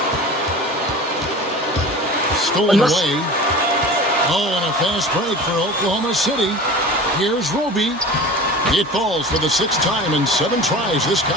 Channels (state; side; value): normal; both; correlation 0.36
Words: Stolen away. Oh, and a fast break for Oklahoma City. Here's Roby. It falls for the 6th time in 7 tries this